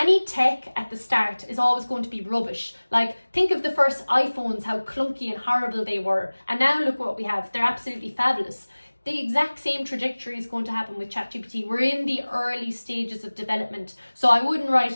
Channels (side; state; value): both; inverted; correlation -1.00